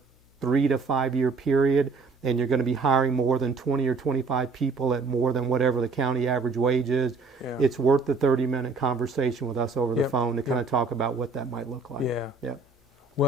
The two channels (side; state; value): left; quieter; 4.1 dB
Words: 3 to 5 year period, and you're going to be hiring more than 20 or 25 people at more than whatever the county average wage is, it's worth the 30-minute conversation with us over the phone to kind of talk about what that might look like.